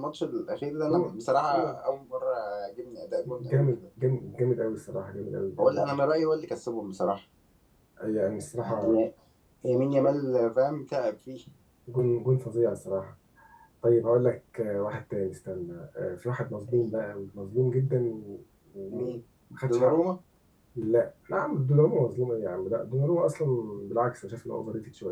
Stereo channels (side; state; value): both; identical; correlation 1.00